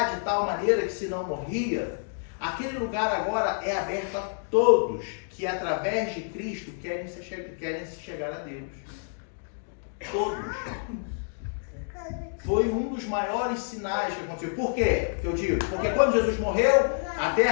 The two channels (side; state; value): right; silent; digital silence